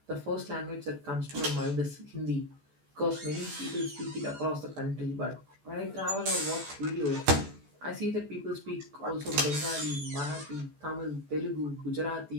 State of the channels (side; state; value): left; late; 14 ms